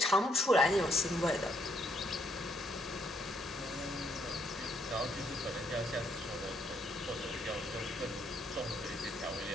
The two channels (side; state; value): both; normal; correlation 0.72